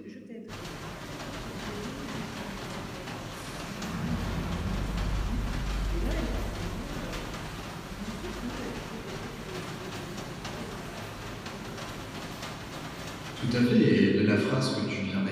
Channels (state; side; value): identical; both; correlation 1.00